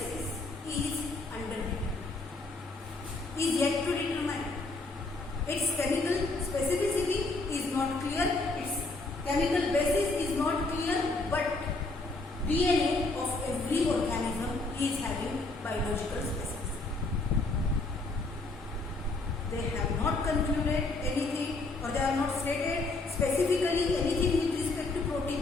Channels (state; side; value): quieter; right; 3.3 dB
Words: is undetermined, is yet to determine. Its chemical specificity is not clear, its chemical basis is not clear, but DNA of every organism is having biological specificity. They have not concluded anything, or they have not stated specifically anything with respect to